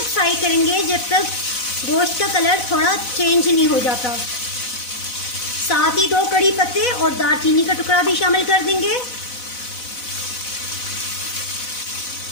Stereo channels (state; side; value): late; right; 4.0 ms